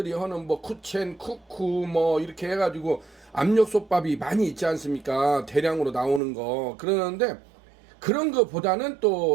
하는 뭐 쿠첸, 쿠쿠 뭐 이렇게 해가지고 압력솥밥이 많이 있지 않습니까? 대량으로 나오는 거. 그러는데 그런 거보다는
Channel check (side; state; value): left; drops out; at 6.2 s